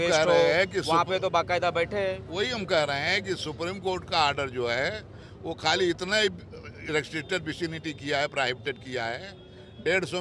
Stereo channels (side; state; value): both; identical; correlation 1.00